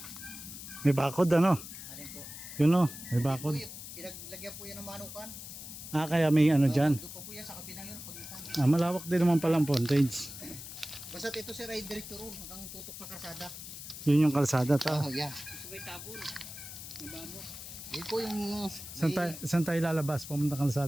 May bakod ano. Alin po? Yun o, may bakod. Pinaglagyan po yan ng manukan. Ah, kaya may ano dyan. Doon pa po yan sa kabilang yun, pag itanan. Ah, malawak din naman palang frontage. Basta ito sir ay direkto ron hanggang tutok sa karsada. Yun yung kalsada ta. Oh, yan. Sabay tabon. Nabamo. Yun po yung... Saan tayo lalabas? Pumunta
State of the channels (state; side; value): noise; left; hiss, 11 dB below the sound